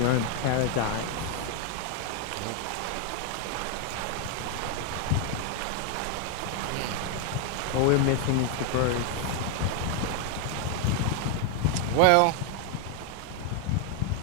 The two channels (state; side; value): different; both; correlation 0.01